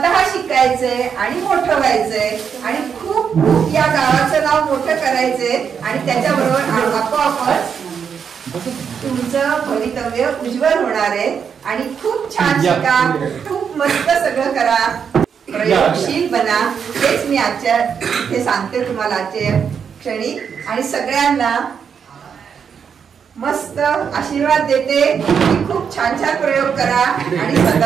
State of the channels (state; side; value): quieter; left; 7.0 dB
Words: शिकायचंय आणि मोठं व्हायचंय आणि खूप खूप या गावाचं नाव मोठं करायचंय आणि त्याच्याबरोबर आपोआपच तुमचं भवितव्य उज्ज्वल होणार आहे. आणि खूप छान शिका, खूप मस्त सगळं करा, प्रयोगशील बना. हेच मी आजच्या हे सांगते तुम्हाला आजच्या क्षणी. आणि सगळ्यांना मस्त आशीर्वाद देते की खूप छान छान प्रयोग करा आणि